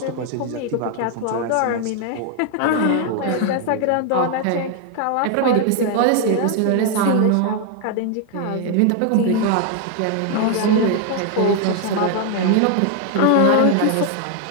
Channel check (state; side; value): different; both; correlation 0.00